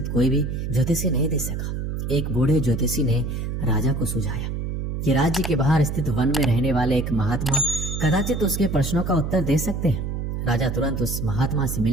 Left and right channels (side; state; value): right; noise; hum, 3 dB below the sound